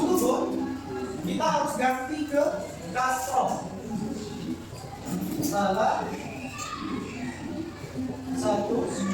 kita harus ganti ke kasroh. Salah satu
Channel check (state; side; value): identical; both; correlation 1.00